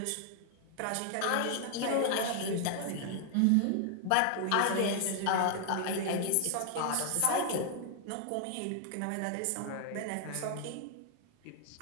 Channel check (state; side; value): different; both; correlation 0.00